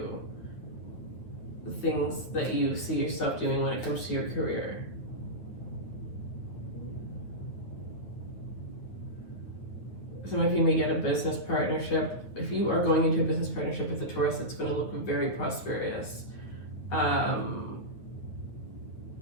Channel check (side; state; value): right; late; 9.4 ms